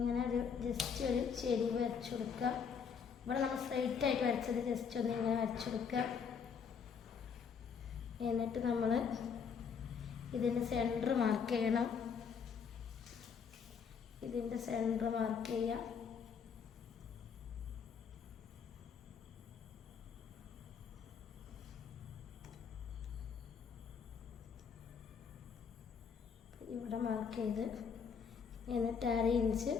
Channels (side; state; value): right; quieter; 6.5 dB